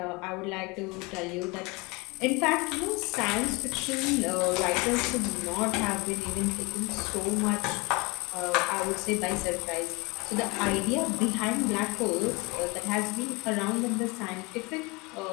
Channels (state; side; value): quieter; right; 26.4 dB